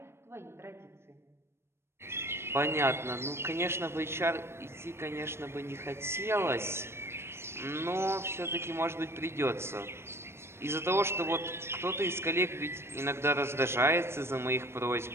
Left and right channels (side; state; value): left; late; 0.12 ms